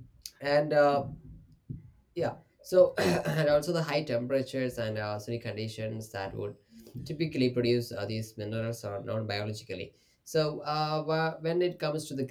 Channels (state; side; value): identical; both; correlation 1.00